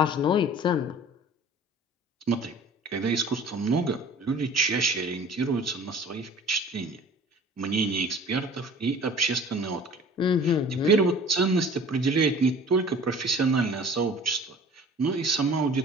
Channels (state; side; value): normal; both; correlation 0.45